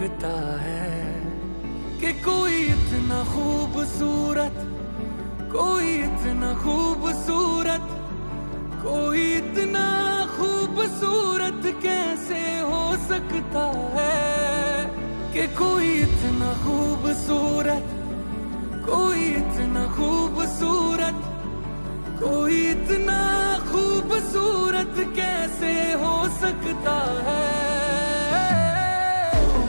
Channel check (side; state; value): both; inverted; correlation -1.00